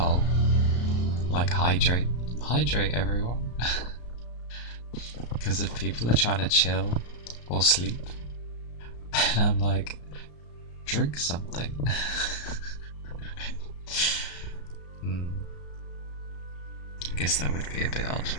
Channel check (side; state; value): right; late; 34 ms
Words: like hydrate everyone. Because if people are trying to chill or sleep, and I'm like, drink something. I guess that would be a bit odd.